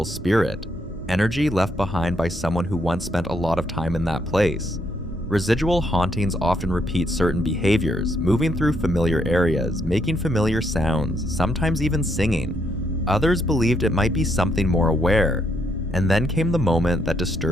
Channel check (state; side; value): normal; both; correlation 0.74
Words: spirit, energy left behind by someone who once spent a lot of time in that place. Residual hauntings often repeat certain behaviors, moving through familiar areas, making familiar sounds, sometimes even singing. Others believed it might be something more aware. And then came the moment that